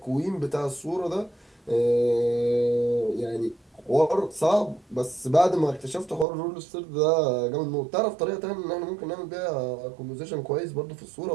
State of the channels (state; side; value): drops out; left; at 6.2 s